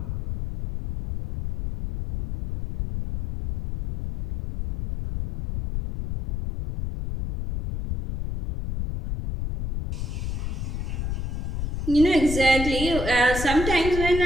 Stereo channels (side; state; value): left; noise; rumble, 4 dB below the sound